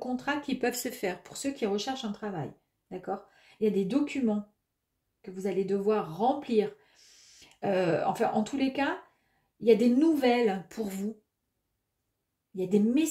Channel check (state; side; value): identical; both; correlation 1.00